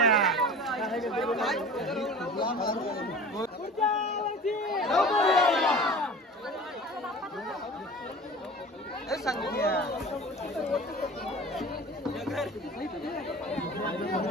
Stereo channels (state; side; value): normal; both; correlation 0.39